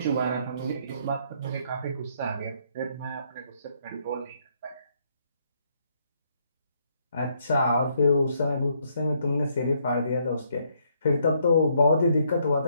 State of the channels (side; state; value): both; inverted; correlation -0.72